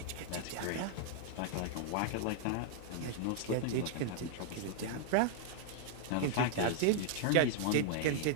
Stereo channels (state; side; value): different; both; correlation -0.01